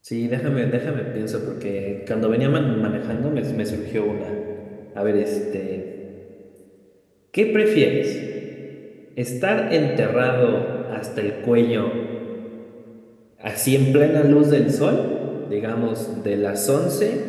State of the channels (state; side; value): identical; both; correlation 1.00